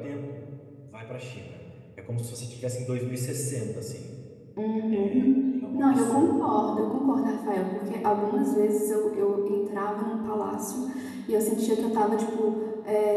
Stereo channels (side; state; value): both; identical; correlation 1.00